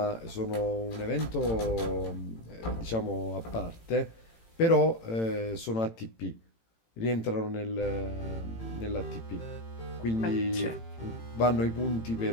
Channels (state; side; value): late; right; 18 ms